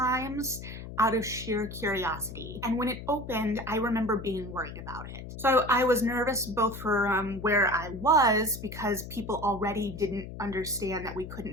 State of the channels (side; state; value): left; noise; hum, 11 dB below the sound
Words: out of sheer curiosity. And when it opened, I remember being worried about it. So I was nervous both for where I was, because people already didn't understand that we